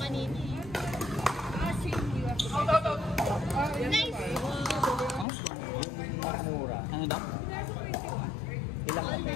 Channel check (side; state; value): right; drops out; at 5.2 s